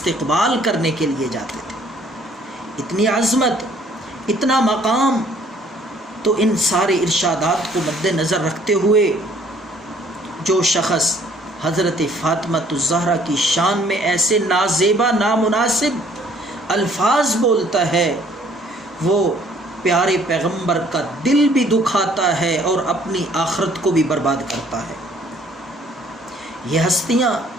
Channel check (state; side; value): normal; both; correlation 0.60